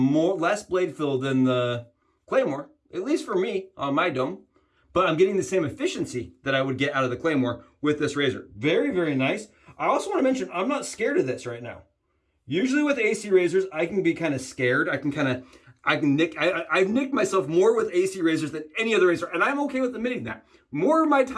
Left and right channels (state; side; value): identical; both; correlation 1.00